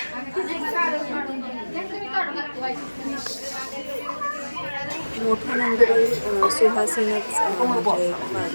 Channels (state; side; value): inverted; both; correlation -1.00